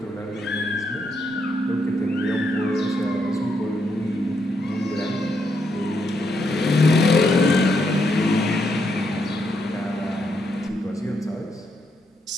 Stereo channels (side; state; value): both; normal; correlation 0.78